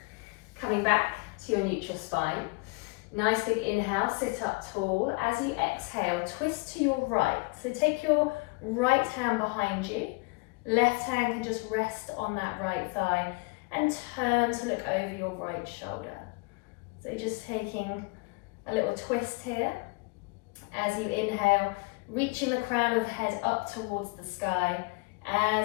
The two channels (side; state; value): right; quieter; 28.3 dB